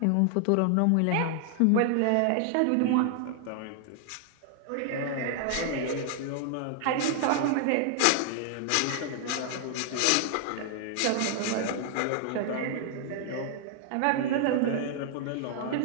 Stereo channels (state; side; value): different; both; correlation 0.00